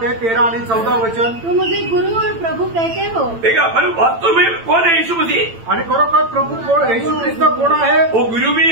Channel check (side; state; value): left; late; 8.9 ms